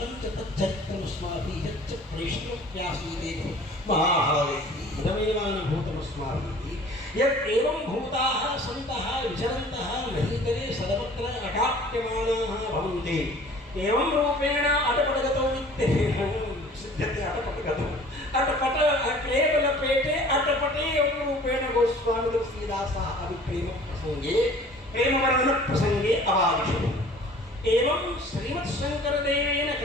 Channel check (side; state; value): both; normal; correlation 0.48